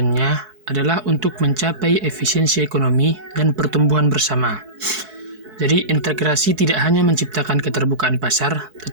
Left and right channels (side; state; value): left; late; 4.6 ms